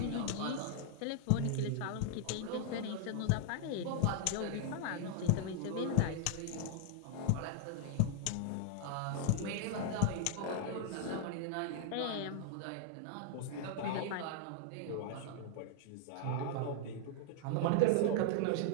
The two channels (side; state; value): both; different; correlation 0.00